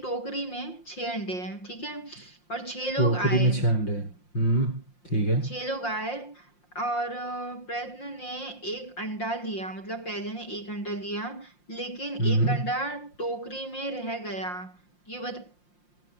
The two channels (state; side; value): late; right; 5.7 ms